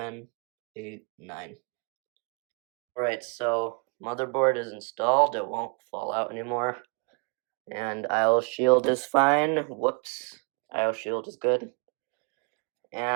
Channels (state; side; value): quieter; left; 36.9 dB